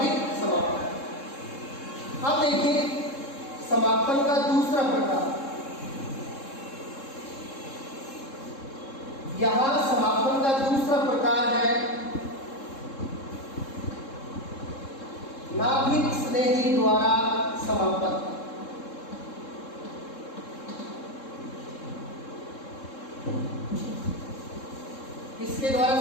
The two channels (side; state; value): right; late; 3.7 ms